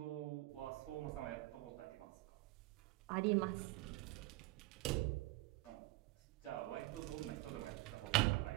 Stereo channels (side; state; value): left; quieter; 19.3 dB